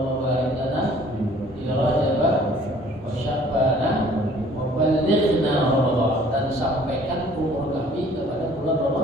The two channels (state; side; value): normal; both; correlation 0.55